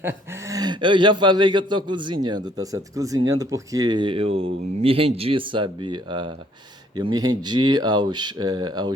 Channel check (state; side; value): normal; both; correlation 0.63